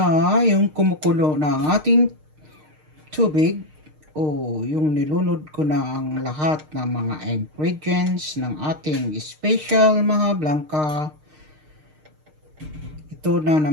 yung kumukulo na ating tubig. Yung nilunod ko na ang lahat ng mga ingredients ng ating special MAJA BLANCA. Ito na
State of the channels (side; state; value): left; late; 6.5 ms